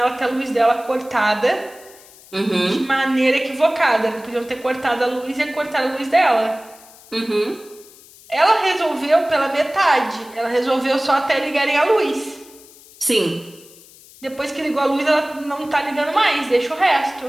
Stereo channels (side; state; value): left; noise; hiss, 23 dB below the sound